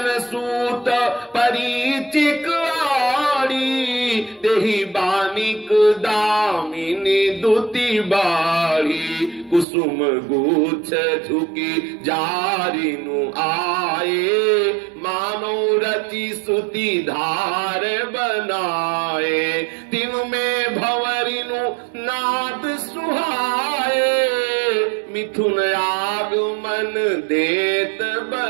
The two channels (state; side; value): drops out; left; at 9.7 s